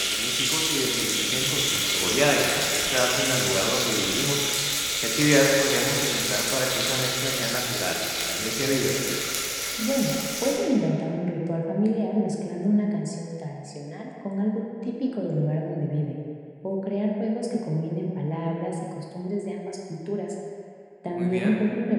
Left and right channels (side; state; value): both; identical; correlation 1.00